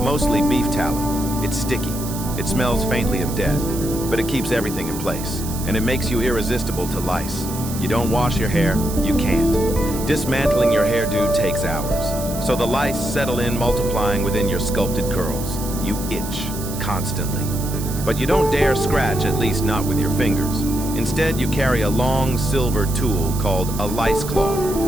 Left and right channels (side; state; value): right; noise; hiss, 11 dB below the sound